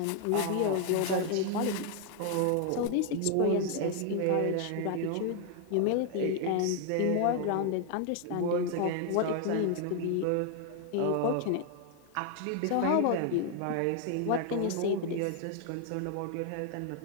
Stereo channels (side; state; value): both; different; correlation 0.00